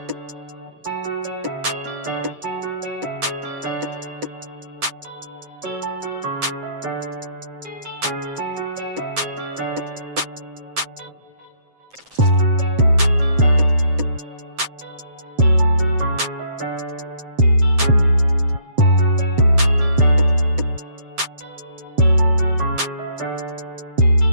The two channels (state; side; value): late; left; 7.6 ms